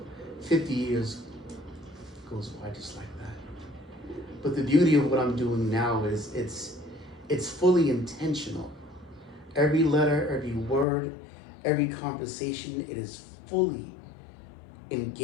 50 years goes by just like that. But the beauty of what I'm doing now is it's fully intentional. Every letter, every word, every conversation, it is fully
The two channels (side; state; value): right; drops out; at 10.9 s